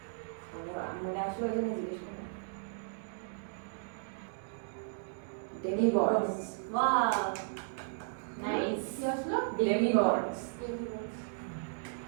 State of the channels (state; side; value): silent; left; digital silence